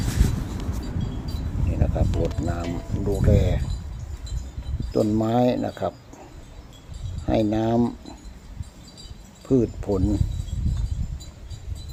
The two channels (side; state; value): both; identical; correlation 1.00